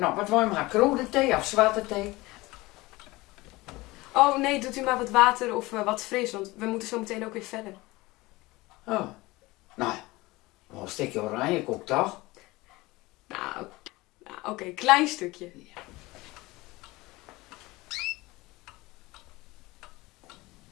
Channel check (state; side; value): quieter; right; 20.9 dB